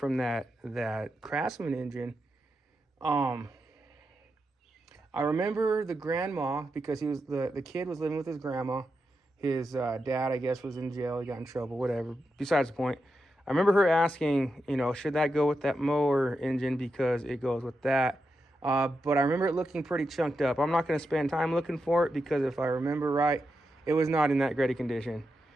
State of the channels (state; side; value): normal; both; correlation 0.87